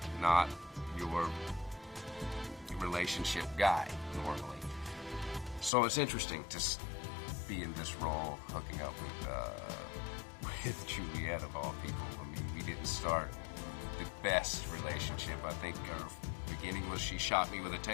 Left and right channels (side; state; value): right; drops out; at 5.7 s